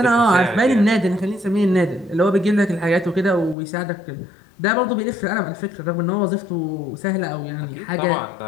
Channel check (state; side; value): drops out; right; at 3.6 s